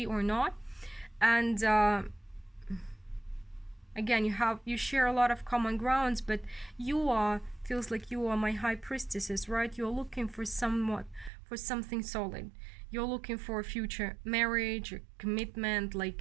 or not. And again, you share a lot of common grounds, but feels like you are my high priestesses, right? You're looking for something solid. You're looking for a future marriage or commitment.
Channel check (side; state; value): left; drops out; at 11.3 s